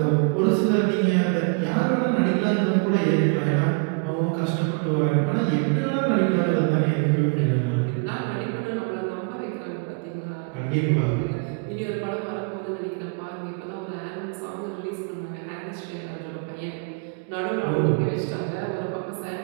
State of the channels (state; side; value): quieter; left; 34.8 dB